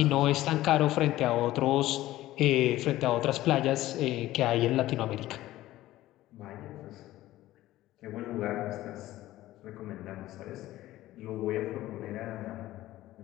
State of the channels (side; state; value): right; quieter; 15.6 dB